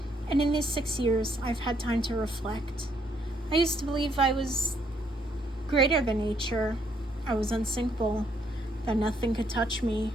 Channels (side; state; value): both; normal; correlation 0.71